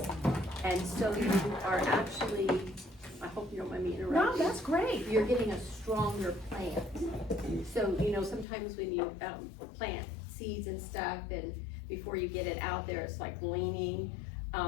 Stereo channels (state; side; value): drops out; right; at 8.5 s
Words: And so you are actually, I hope you don't mind me interrupting. No, that's great. You're getting a stronger plant. So, sometimes when you, plant seeds and stuff, and before you get it out there, it's like leaning.